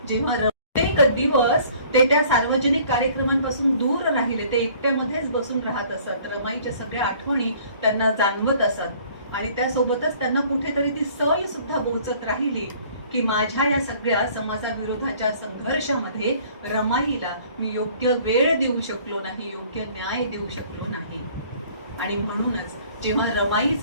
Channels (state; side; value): inverted; both; correlation -0.55